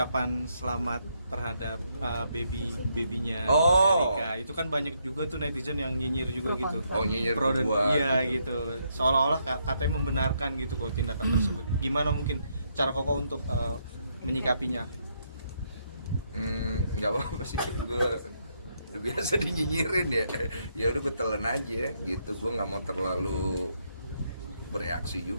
selamat terhadap babynya Erika? Itu kan banyak juga tuh netizen yang nyinyir juga gitu. Oh, nyinyir Pro dan gua, iya gitu. gitu. Seolah-olah katanya membenarkan gitu kok tindakan tersebut. Gimana mungkin cara Koko untuk menyikapinya? Nggak apa-apa sih, gue udah biasa dinyinyirin ya. Ya udah gue telan aja gitu, gue nggak mau terlalu bereaksi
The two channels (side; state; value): both; inverted; correlation -0.76